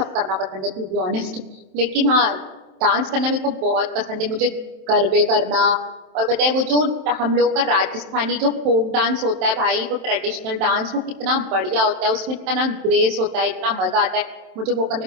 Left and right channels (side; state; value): left; late; 27 ms